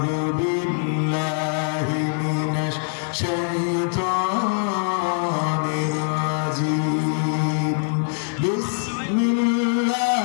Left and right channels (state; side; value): silent; right; digital silence